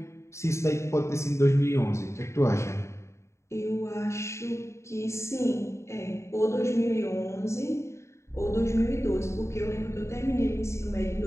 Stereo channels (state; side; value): late; right; 0.14 ms